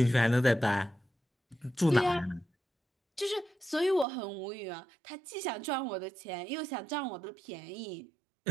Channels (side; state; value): left; drops out; at 4.0 s